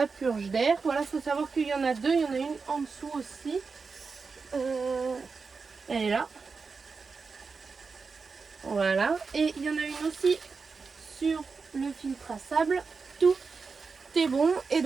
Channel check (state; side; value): quieter; left; 4.8 dB